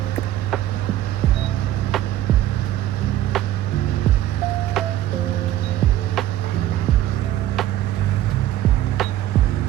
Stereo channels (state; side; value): quieter; left; 13.2 dB